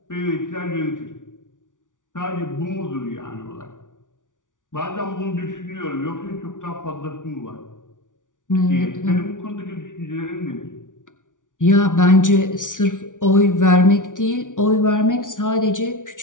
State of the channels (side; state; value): right; late; 0.87 ms